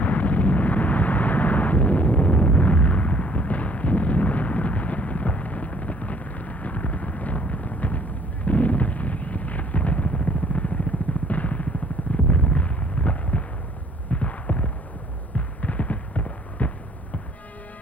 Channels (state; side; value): normal; both; correlation 0.60